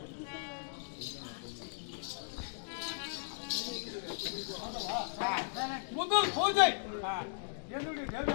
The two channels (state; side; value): silent; right; digital silence